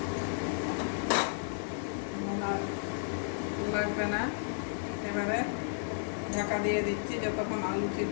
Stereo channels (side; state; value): right; silent; digital silence